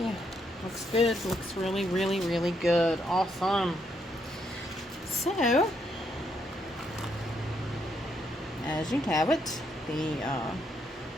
Looks good. Looks really, really, really good. Awesome. So, as you have it, the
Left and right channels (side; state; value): both; normal; correlation 0.76